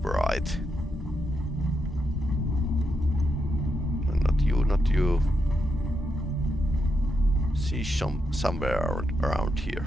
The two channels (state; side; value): normal; both; correlation 0.83